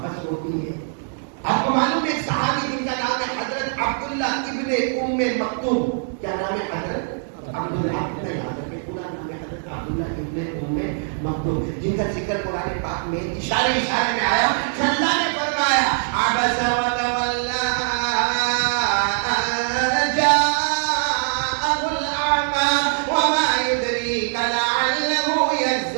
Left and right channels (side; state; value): left; silent; digital silence